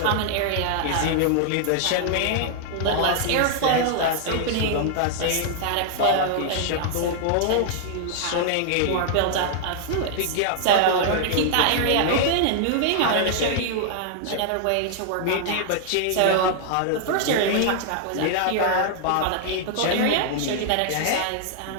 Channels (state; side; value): different; both; correlation -0.01